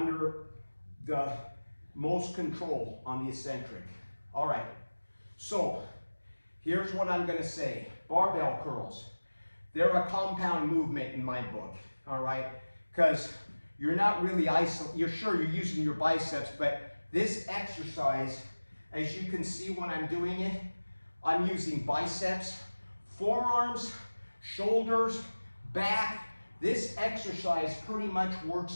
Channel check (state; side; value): inverted; both; correlation -1.00